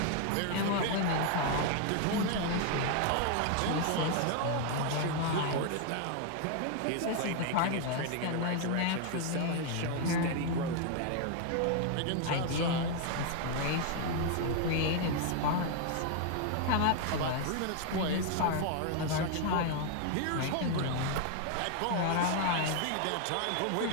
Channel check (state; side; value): different; both; correlation 0.00